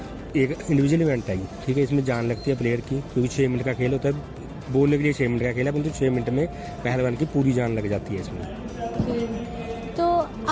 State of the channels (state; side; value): identical; both; correlation 1.00